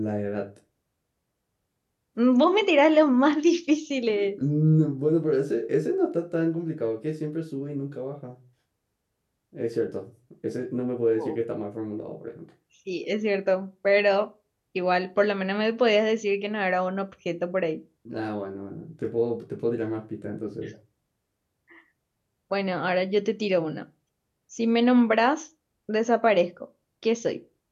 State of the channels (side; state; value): both; identical; correlation 1.00